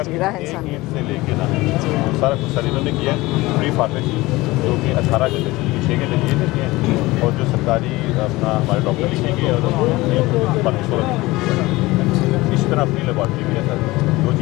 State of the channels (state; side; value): quieter; right; 20.2 dB